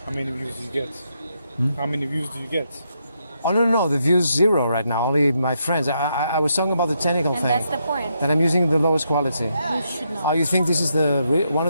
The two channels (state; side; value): inverted; both; correlation -0.79